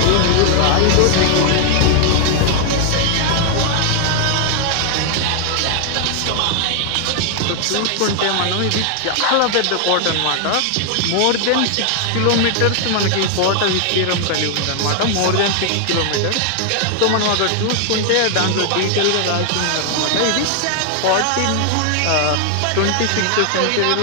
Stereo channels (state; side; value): different; both; correlation 0.00